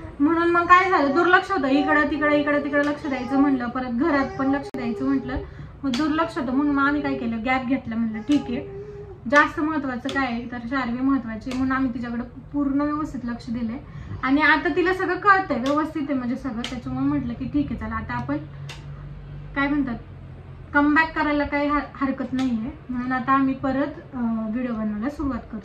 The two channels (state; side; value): identical; both; correlation 1.00